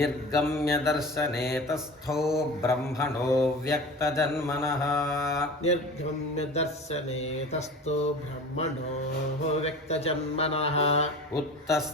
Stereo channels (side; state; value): both; normal; correlation 0.36